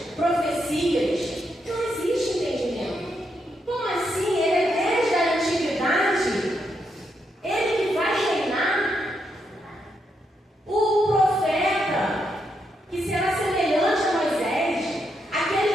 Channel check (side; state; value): both; normal; correlation 0.80